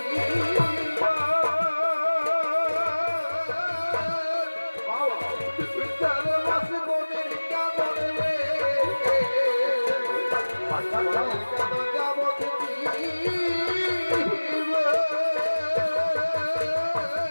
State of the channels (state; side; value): inverted; both; correlation -1.00